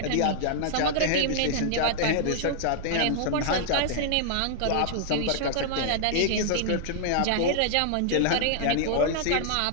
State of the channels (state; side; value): different; both; correlation -0.01